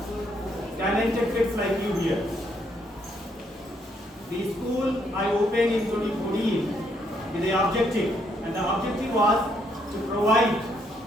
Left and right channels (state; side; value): normal; both; correlation 0.73